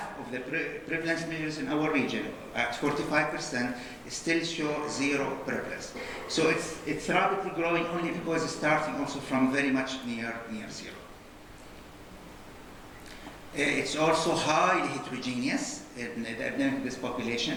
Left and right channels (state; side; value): identical; both; correlation 1.00